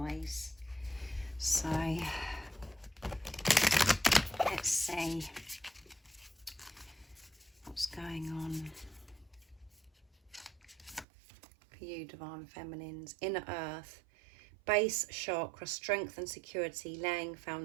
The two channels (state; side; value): drops out; left; at 11.1 s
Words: So let's see what's going on for you, Divine Feminines. Inner Earth, base chakra, strength and security, laying